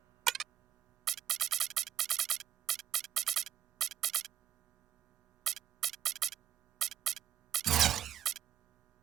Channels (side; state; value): left; quieter; 11.1 dB